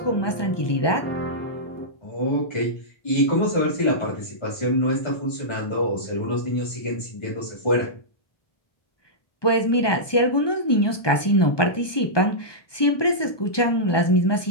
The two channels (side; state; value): right; late; 1.2 ms